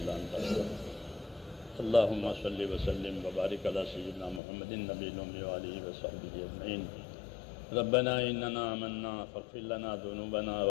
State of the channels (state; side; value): drops out; right; at 4.4 s